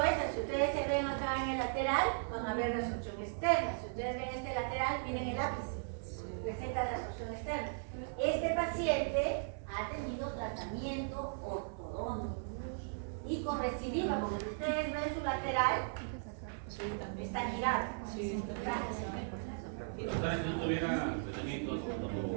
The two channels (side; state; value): left; silent; 53 dB below the other